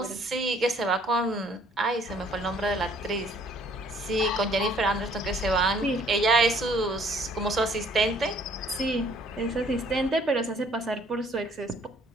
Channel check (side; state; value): both; normal; correlation 0.60